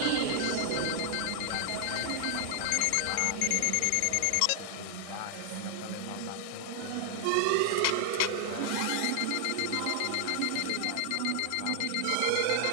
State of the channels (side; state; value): both; different; correlation -0.01